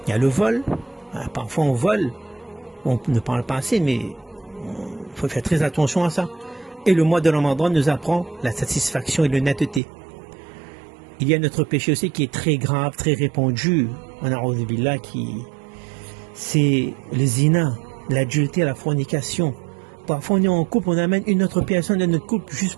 Il y a le vol. Parfois on vole. On ne parle pas assez, mais il faut faire très attention à ça. Et le mois de Ramadan nous apprend la satisfaction et l'honnêteté. Il y a notre péché aussi qui est très grave, très répandu. C'est le zina, l'adultère, la fornication. Parfois on est en couple, on amène une autre personne dans notre couple juste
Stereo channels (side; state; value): left; drops out; at 9.8 s